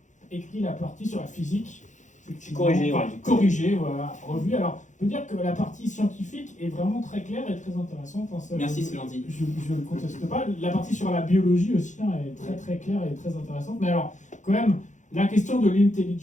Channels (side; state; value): right; late; 0.35 ms